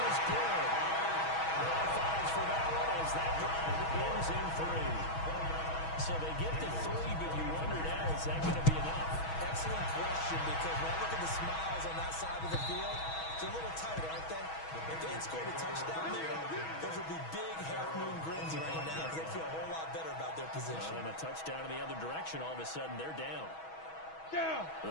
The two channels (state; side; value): late; right; 6.2 ms